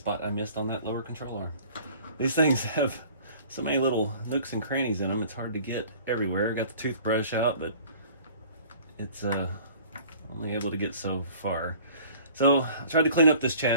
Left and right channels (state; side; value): inverted; both; correlation -0.49